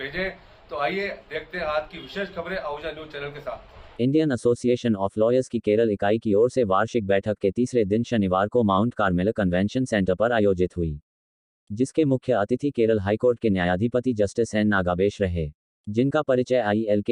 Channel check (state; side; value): identical; both; correlation 1.00